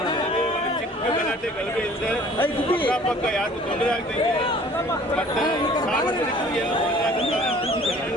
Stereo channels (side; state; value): both; normal; correlation 0.51